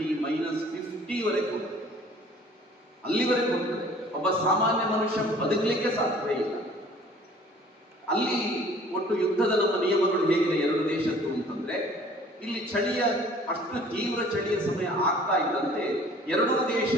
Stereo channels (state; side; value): normal; both; correlation 0.52